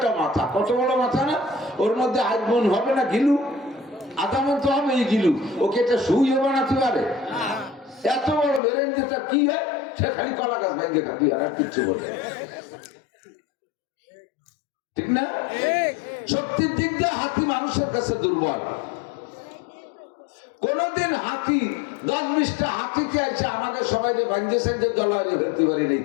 মাথা, কত বড় মাথা না, ওর মধ্যে আজমন হবে না গিলু, আদামন তো হবে এই গিলু, ওকে এটা সুইও বানাতে পারে? এত বড় বেরেন যেটা কি হয়, সে খালি কলা গাছ ভেঙে খাবি, আর কিচ্ছু বলে, ঠিক না? শক্তির দিক দিয়ে হাতি মানুষের কাছে দুর্বল। কোনদিন হাতি 10-20টা হাতিতে আছে আমাকে সবাই যে ভাঙছেন যে দলারে ফেলতে পারি নেই,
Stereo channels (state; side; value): drops out; right; at 8.6 s